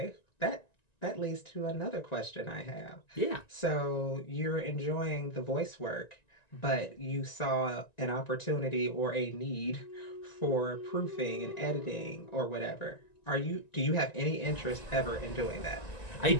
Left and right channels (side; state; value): right; late; 1.9 ms